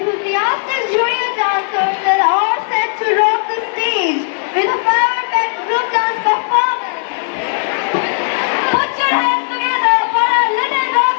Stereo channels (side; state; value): right; silent; digital silence